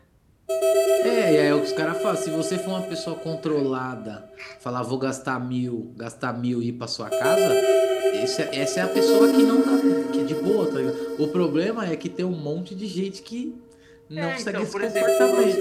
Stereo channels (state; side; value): identical; both; correlation 1.00